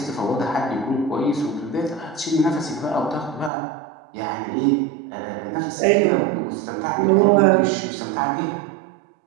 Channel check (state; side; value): drops out; left; at 3.5 s